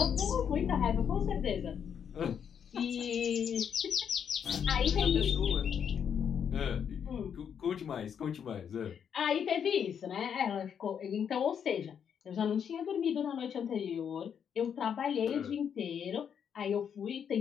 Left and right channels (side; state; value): right; quieter; 7.9 dB